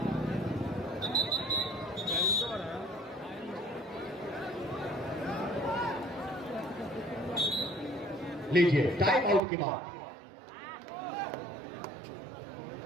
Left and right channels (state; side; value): drops out; left; at 9.4 s